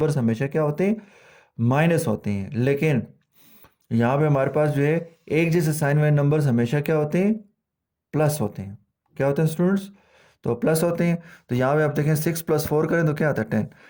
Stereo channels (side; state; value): both; identical; correlation 1.00